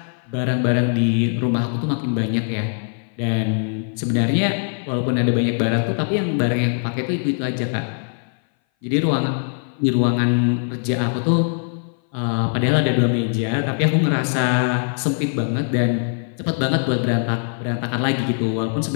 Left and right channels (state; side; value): silent; right; 58 dB below the other